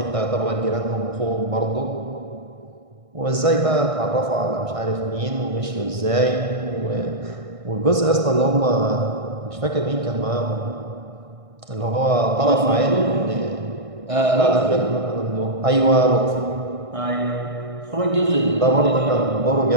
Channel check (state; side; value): late; left; 1.6 ms